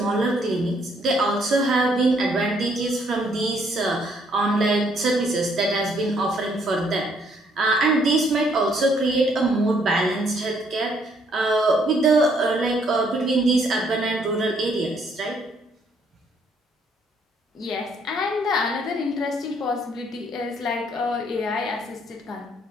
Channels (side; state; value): both; normal; correlation 0.68